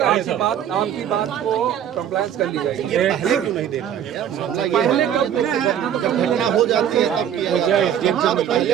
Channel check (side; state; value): left; quieter; 9.7 dB